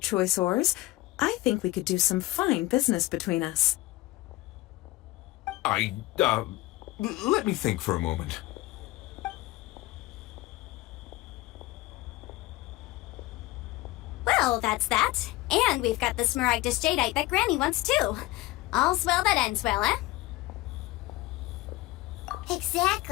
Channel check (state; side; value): quieter; right; 18.6 dB